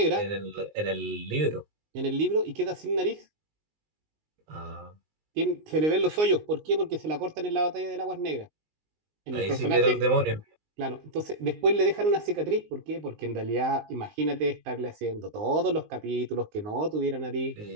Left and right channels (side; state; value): left; late; 19 ms